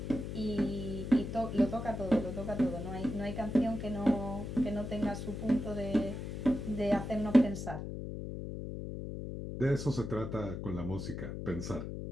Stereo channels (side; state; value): left; noise; hum, 6 dB below the sound